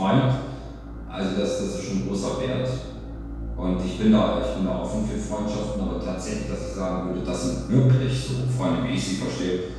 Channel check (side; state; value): both; identical; correlation 1.00